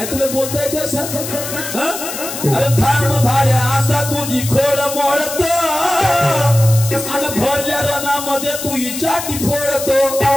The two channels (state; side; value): noise; left; hiss, 7 dB below the sound